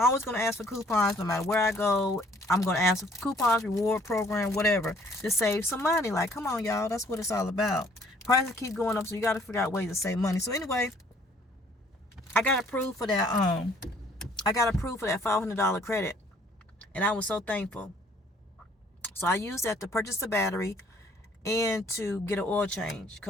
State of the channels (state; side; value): normal; both; correlation 0.60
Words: going to ask for coupons no matter where I go. I'm going to ask for coupons, reward program, whatever, to save some money. Like, come on, y'all. That's what it's all about. Prices keep going up, so you got to figure out ways to save money. So anyway, I got approved for that. I got approved for that $500 credit, and I was so thankful. So I used that to purchase the battery and to get an oil change.